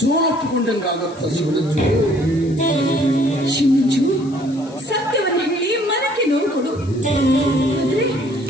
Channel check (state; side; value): noise; left; hiss, 25 dB below the sound